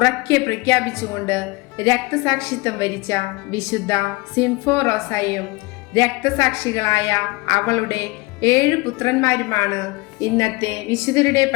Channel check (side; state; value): right; quieter; 24.1 dB